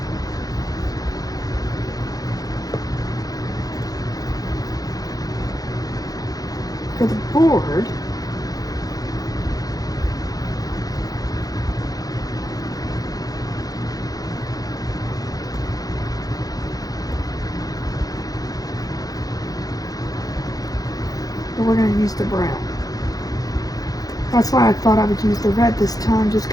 for the board. But we're going to use the brown. That's why I thought I would use the red this time, just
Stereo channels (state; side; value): late; right; 0.18 ms